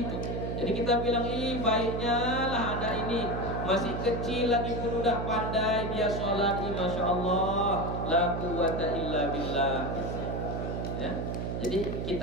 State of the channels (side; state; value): right; noise; hum, 3 dB below the sound